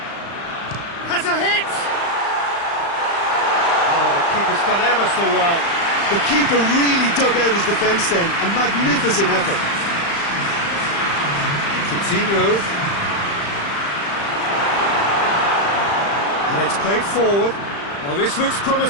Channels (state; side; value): late; right; 35 ms